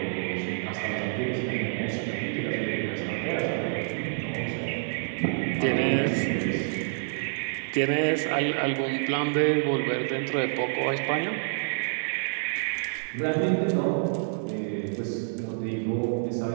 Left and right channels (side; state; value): left; silent; 60 dB below the other